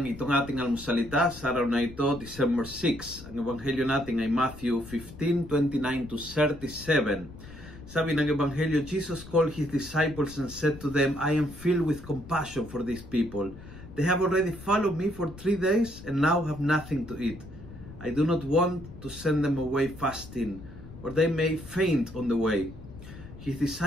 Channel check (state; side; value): noise; left; rumble, 16 dB below the sound